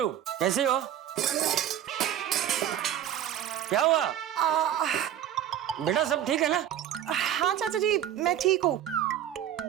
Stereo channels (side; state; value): left; quieter; 10.8 dB